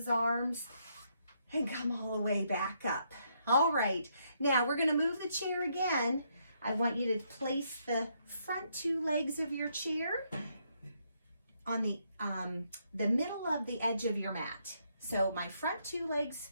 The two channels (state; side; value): inverted; both; correlation -0.75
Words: arms and come all the way back up. All right, now we're going to move the chair again. I want you to place the front two legs of your chair on the middle of the edge of your mat. So my front two legs